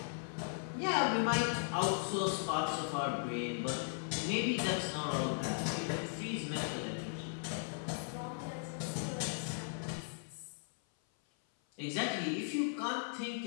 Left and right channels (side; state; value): right; silent; 53 dB below the other